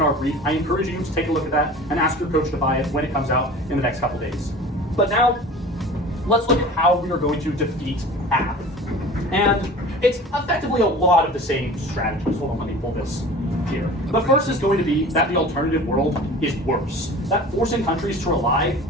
our brief. I encourage you to take a look at that and ask your coach to buy it when it comes out in the next couple days. But now, let's look at how we are going to defeat AF. And it's effectively a lot of the same strategies. Hold on, let me pull this here. The first is going to be that the alternative world is worse. That forcing countries to rely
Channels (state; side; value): normal; both; correlation 0.40